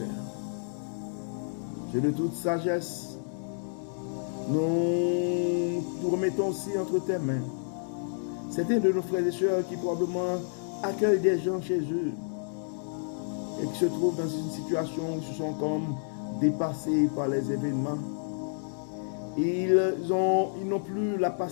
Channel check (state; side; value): silent; right; digital silence